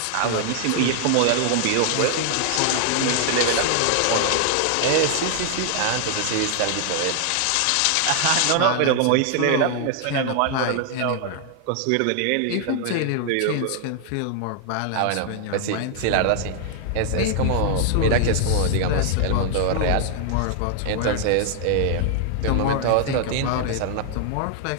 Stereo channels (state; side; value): different; both; correlation 0.00